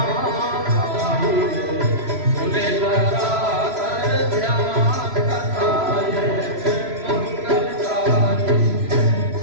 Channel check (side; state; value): left; late; 3.0 ms